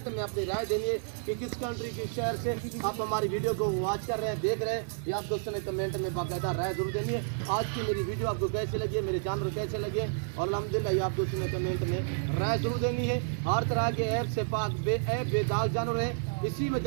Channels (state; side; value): silent; left; 55 dB below the other